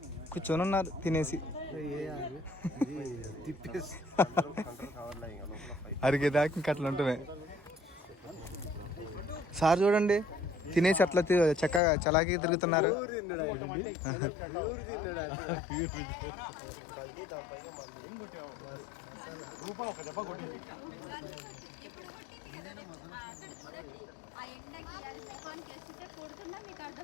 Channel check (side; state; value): right; drops out; at 11.8 s